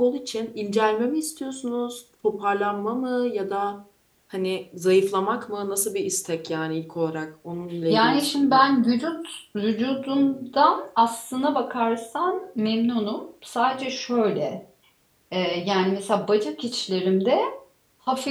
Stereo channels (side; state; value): both; identical; correlation 1.00